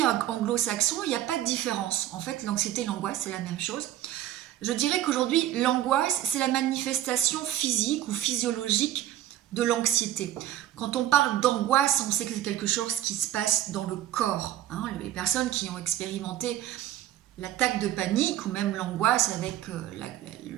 anglo-saxons, il n'y a pas de différence. En fait, l'anxiété et l'angoisse, c'est la même chose. Je dirais qu'aujourd'hui, l'angoisse, c'est la manifestation physique ou physiologique de l'anxiété. Quand on parle d'angoisse, on sait que c'est quelque chose qui se passe dans le corps. Les personnes qui ont expérimenté l'attaque de panique ou même l'angoisse avec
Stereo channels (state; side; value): quieter; left; 12.7 dB